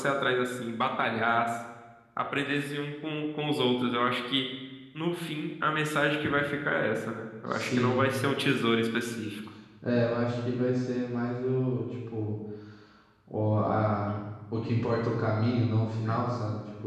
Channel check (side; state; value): both; identical; correlation 1.00